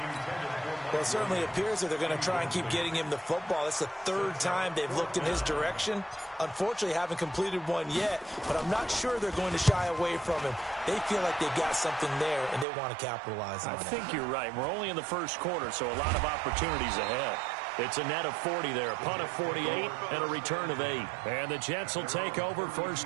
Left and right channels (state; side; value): drops out; left; at 12.7 s